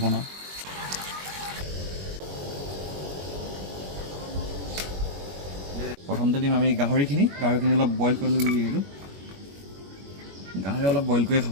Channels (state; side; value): late; left; 21 ms